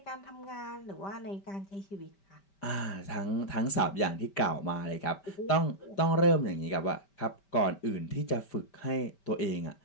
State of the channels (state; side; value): late; right; 5.1 ms